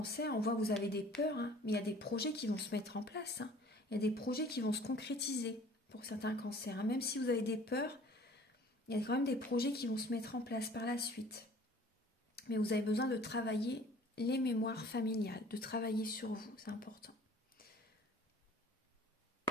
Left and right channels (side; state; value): both; normal; correlation 0.50